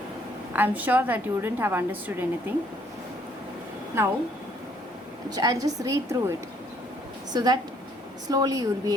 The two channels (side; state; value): both; normal; correlation 0.65